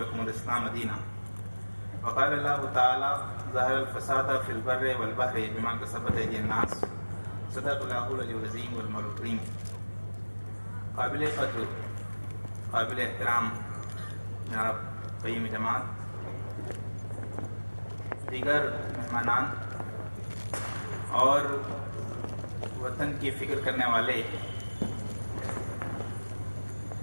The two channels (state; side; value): inverted; both; correlation -1.00